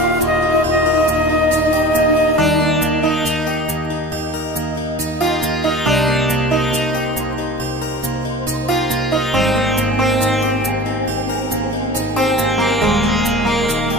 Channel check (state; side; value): normal; both; correlation 0.38